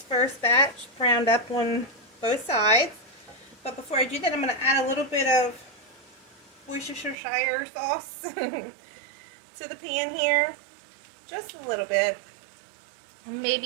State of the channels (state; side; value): drops out; left; at 7.2 s